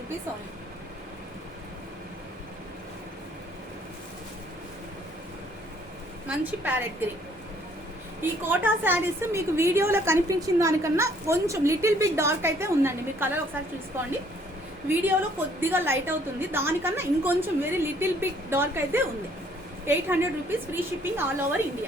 only. మంచి ప్యారెట్ గ్రీన్. ఈ కోటా శారీస్ మీకు వీడియోలో కనిపించిన దానికన్నా కొంచెం లిటిల్ బిట్ డార్క్ అయితే ఉందండి. మీరు కలర్ ఒకసారి చూసుకోండి, వీడియోలో కొద్దిగా లైట్ అవుతుంది, దానికన్నా ఇంకొంచెం వెరీ లిటిల్ బిట్ డార్క్ అయితే ఉంది. 800 rupees free shipping all over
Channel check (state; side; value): normal; both; correlation 0.62